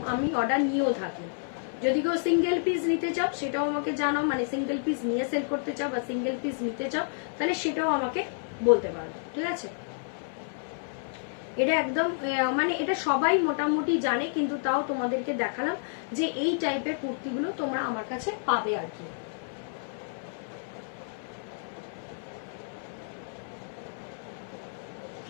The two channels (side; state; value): right; silent; 58 dB below the other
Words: আমি অর্ডার নিয়েও থাকি। যদি কেউ সিঙ্গেল পিস নিতে চাও সেটাও আমাকে জানাও, মানে সিঙ্গেল পিস নিয়ে সেল করতে চাও বা সিঙ্গেল পিস নিতে চাও তাহলে সেটাও আমাকে বলতে পারো, ঠিক আছে। এটা একদম মানে এটা সবাই মোটামুটি জানে, কিন্তু তাও তোমাদেরকে দেখালাম যে এই টাইপের কুর্তিগুলো তোমরা আমার কাছে পাবে আর কি।